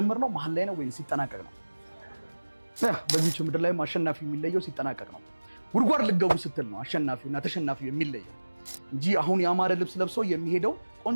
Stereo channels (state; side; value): inverted; both; correlation -1.00